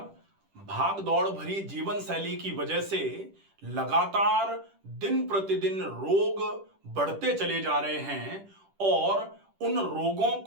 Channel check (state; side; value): late; left; 10 ms